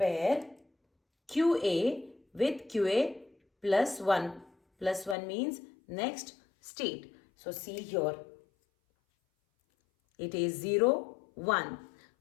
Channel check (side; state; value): right; drops out; at 5.2 s